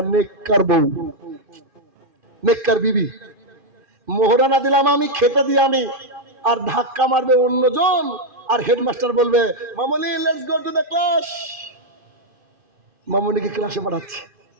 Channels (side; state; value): left; late; 2.5 ms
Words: নেককার বউ, নেককার বিবি। মোহরানা দিলাম আমি, খেতে দিয়ে আমি, আর ধাক্কা মারবে অন্যজন, আর হেডমাস্টার বলবে Mamuni let's go to the class. মামুনিকে ক্লাসে পাঠাচ্ছে।